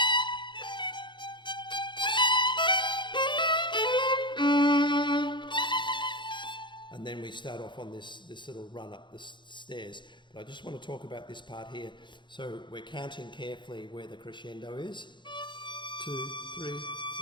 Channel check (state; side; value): late; right; 0.23 ms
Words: And then we start off on this little run up the stairs. But I just want to talk about this part here. So we're counting carefully where the crescendo is. 2, 3, 4,